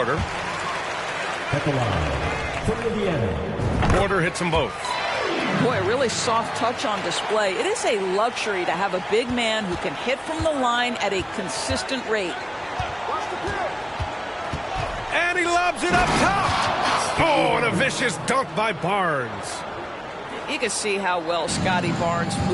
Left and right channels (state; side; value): identical; both; correlation 1.00